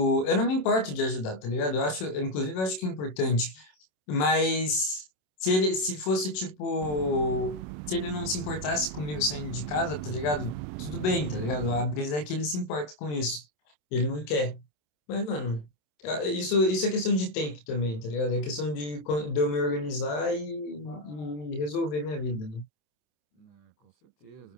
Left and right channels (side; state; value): right; late; 27 ms